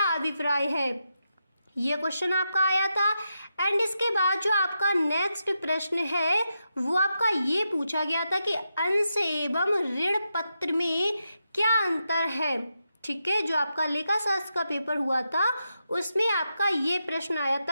अभिप्राय है, ये क्वेश्चन आपका आया था। एंड इसके बाद जो आपका नेक्स्ट प्रश्न है वो आपका ये पूछा गया था कि अंश एवं ऋण पत्र में क्या अंतर है, ठीक है। जो आपका लेखा शास्त्र का पेपर हुआ था उसमें आपका ये प्रश्न आया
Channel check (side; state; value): both; inverted; correlation -0.86